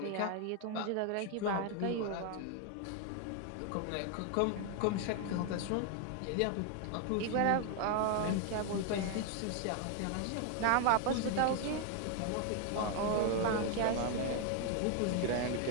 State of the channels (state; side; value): different; both; correlation 0.01